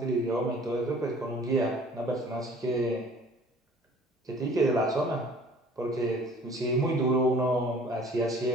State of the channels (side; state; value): both; normal; correlation 0.51